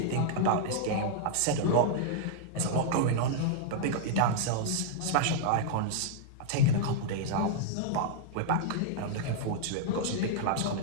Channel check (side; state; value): both; different; correlation -0.01